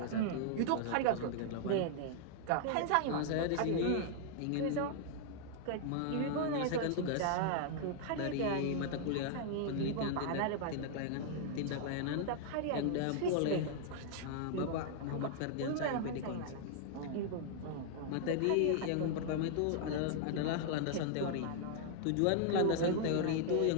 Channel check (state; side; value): different; both; correlation -0.01